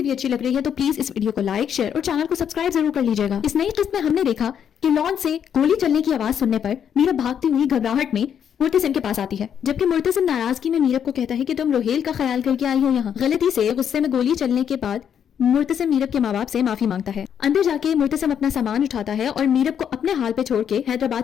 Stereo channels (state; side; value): quieter; right; 8.5 dB